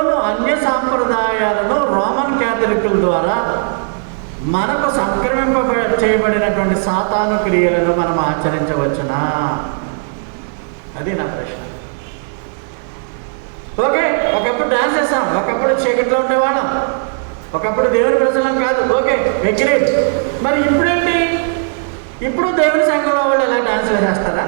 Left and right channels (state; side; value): silent; left; 67 dB below the other